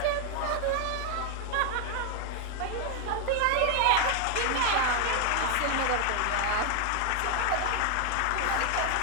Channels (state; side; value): different; both; correlation 0.01